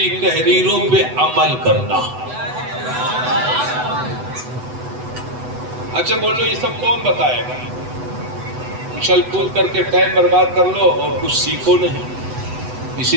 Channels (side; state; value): left; late; 8.0 ms